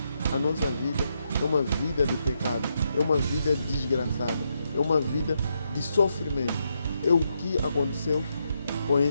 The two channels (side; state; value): both; inverted; correlation -0.80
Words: a nossa vida é uma vida de pecado, é uma vida desgraçada, é uma vida de sofrimento. É o que aconteceu com